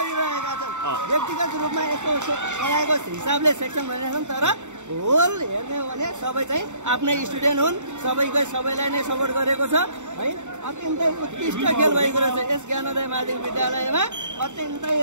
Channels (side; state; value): left; late; 0.84 ms